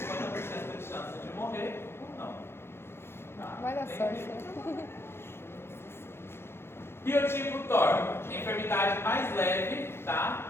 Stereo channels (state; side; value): late; right; 0.12 ms